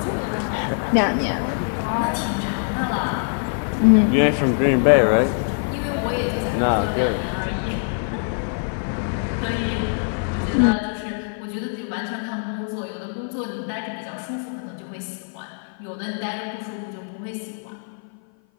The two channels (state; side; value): silent; right; 55 dB below the other